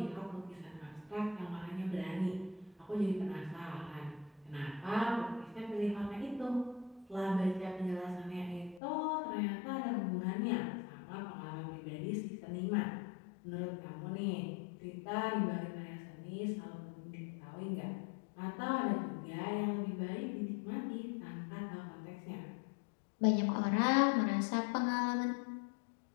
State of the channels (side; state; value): right; drops out; at 8.8 s